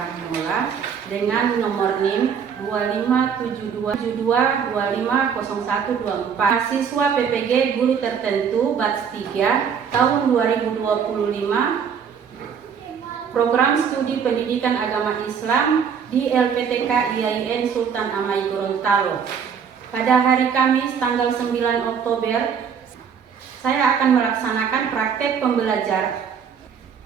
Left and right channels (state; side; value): quieter; left; 7.1 dB